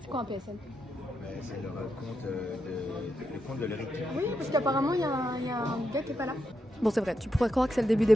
C'est quoi un PSN? C'est leur compte le compte de leur équipe. Oui, parce qu'apparemment il y a un gars qui est pas là. Bon, c'est vrai, tu pourrais croire que c'est le début des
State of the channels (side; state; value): both; normal; correlation 0.84